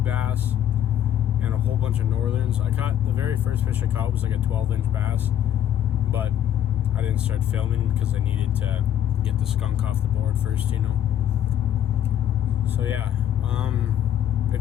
bass and a whole bunch of northerns. I caught, the very first fish I caught was like a 12-inch bass, but I didn't start filming because I needed to get the skunk off the board first, you know. So yeah,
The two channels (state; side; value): quieter; right; 10.6 dB